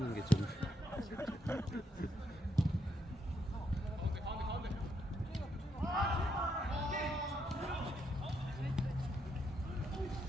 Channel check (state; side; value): normal; both; correlation 0.77